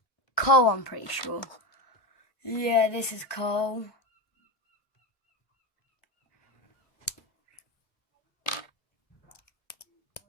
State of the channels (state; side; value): late; right; 1.1 ms